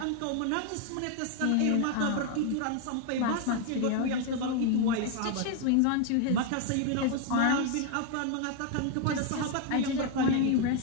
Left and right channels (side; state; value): both; different; correlation 0.01